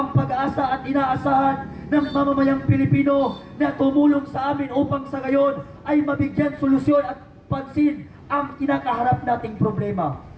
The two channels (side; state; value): both; identical; correlation 1.00